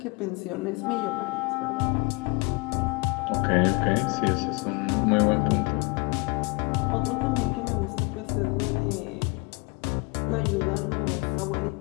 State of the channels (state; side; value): quieter; right; 27.8 dB